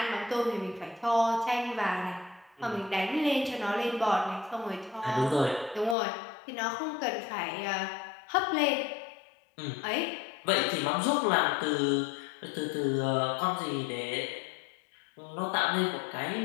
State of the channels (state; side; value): drops out; right; at 6.0 s